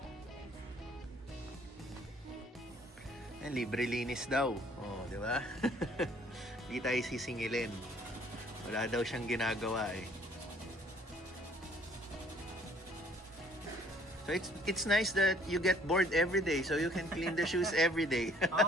Libre linis daw. Oh, di ba? Hindi tayo sisingilin. Wala daw siyang ginagawa eh. So it's nice that you get bored every day, so you can clean the shoes every day.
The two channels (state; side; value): normal; both; correlation 0.59